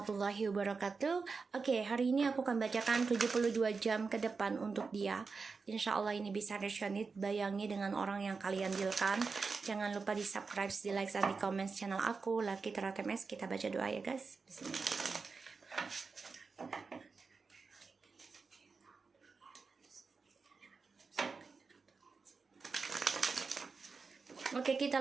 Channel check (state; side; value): quieter; left; 4.7 dB